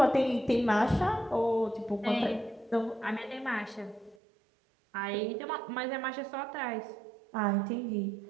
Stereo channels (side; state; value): left; drops out; at 4.2 s